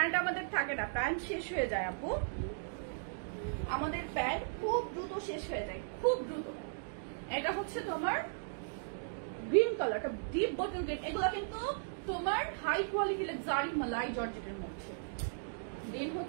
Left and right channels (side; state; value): left; silent; digital silence